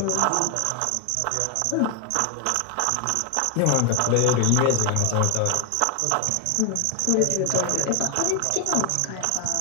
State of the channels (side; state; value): both; different; correlation 0.01